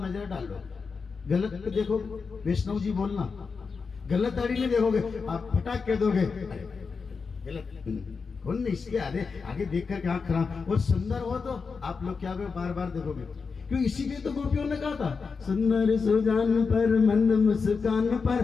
नजर डालो, गलत पे देखो, वैष्णव जी बोलना, गलत दाढ़ी नहीं देखोगे, आप फटाक कह दोगे गलत कौन नहीं, इसके आगे देखकर क्या खराब। और सुंदर हो तो आप लोग क्या बार बार देखोगे, क्यों? इसीलिए तो गोपियों ने कहा था, सुंदर सुजान पर मंद मुस्कान पर,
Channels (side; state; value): right; quieter; 5.1 dB